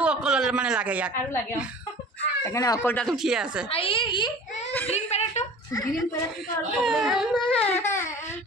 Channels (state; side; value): normal; both; correlation 0.42